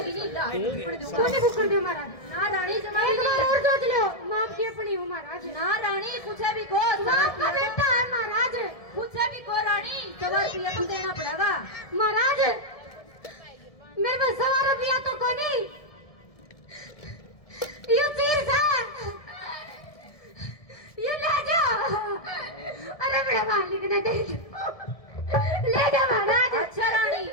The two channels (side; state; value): right; late; 1.7 ms